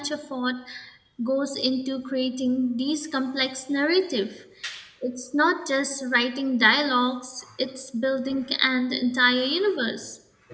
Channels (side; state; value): both; identical; correlation 1.00